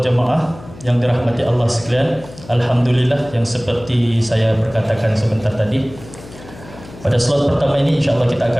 Jamaah yang dirahmati Allah sekalian, alhamdulillah, yang seperti saya berkatakan sebentar tadi, pada slot pertama ini insyaAllah kita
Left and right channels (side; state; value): left; noise; hum, 18 dB below the sound